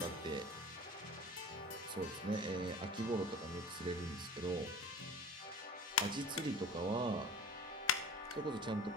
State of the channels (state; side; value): normal; both; correlation 0.39